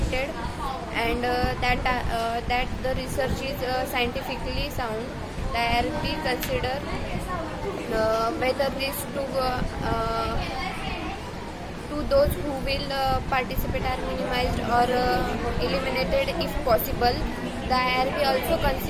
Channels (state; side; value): identical; both; correlation 1.00